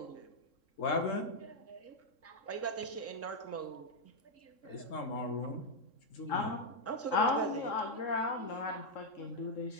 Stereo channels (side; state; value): right; late; 3.7 ms